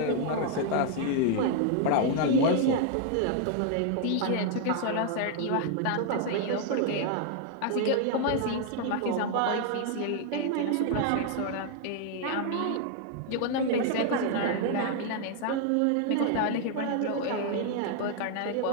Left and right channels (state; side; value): different; both; correlation 0.00